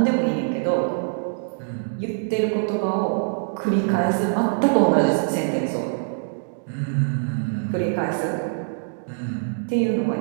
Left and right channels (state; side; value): silent; left; digital silence